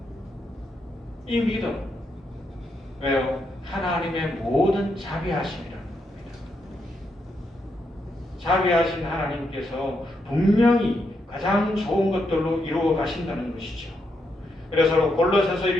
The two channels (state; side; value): normal; both; correlation 0.80